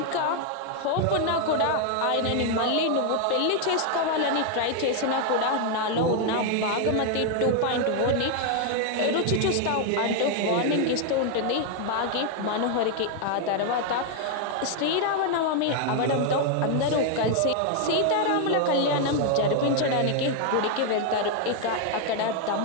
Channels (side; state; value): both; different; correlation 0.00